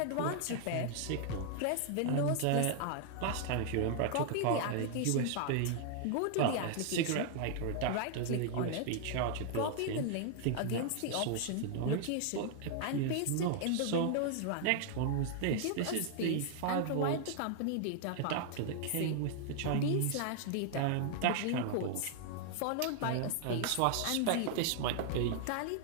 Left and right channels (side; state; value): both; different; correlation 0.00